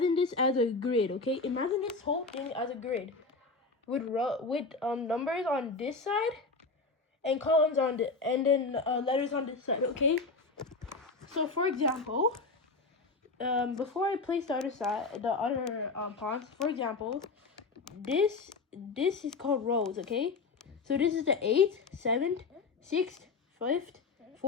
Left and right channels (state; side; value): quieter; right; 4.0 dB